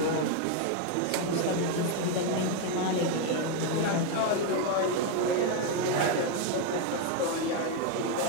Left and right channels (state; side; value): different; both; correlation 0.01